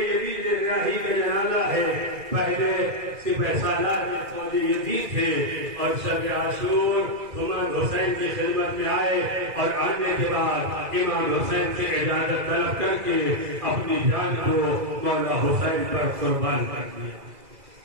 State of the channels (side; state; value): left; late; 2.0 ms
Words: ریاحی کا جنازہ ہے۔ پہلے سپہ سالار فوج یزید تھے اور شب عاشور امام حسین کی خدمت میں آئے، اور آنے کے بعد امام حسین سے اجازت طلب کر کے اپنی جان کو مولا حسین پر قربان کر دیا۔